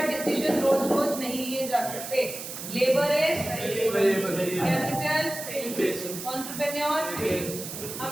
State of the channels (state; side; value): noise; right; hiss, 9 dB below the sound